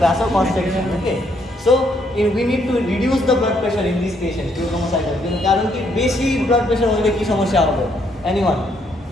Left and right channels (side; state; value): both; normal; correlation 0.72